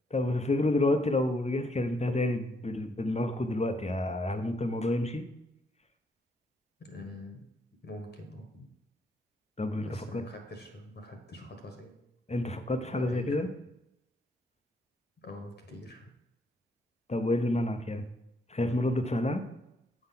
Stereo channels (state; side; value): normal; both; correlation 0.73